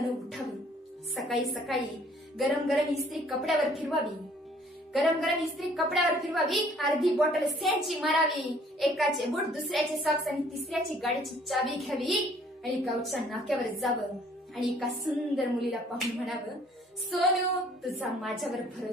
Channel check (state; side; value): normal; both; correlation 0.58